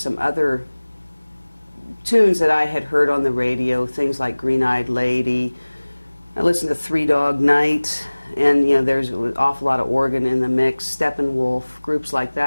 other tunes that I had heard on the radio, things like Green-Eyed Lady. I listened to Three Dog Night, and you know, there's an awful lot of organ in the mix. Steppenwolf, groups like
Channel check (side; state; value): both; inverted; correlation -1.00